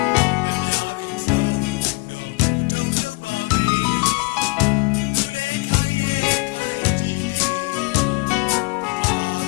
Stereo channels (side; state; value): right; quieter; 28.3 dB